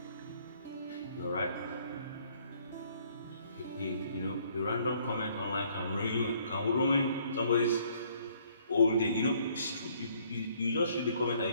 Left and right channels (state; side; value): inverted; both; correlation -0.63